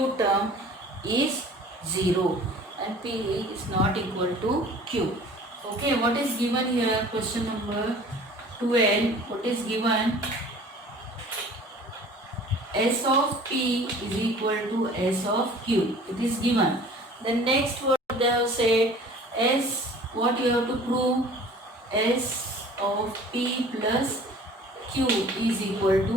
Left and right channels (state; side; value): normal; both; correlation 0.47